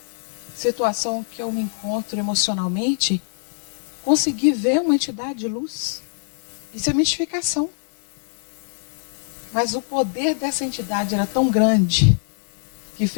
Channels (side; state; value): right; silent; 63 dB below the other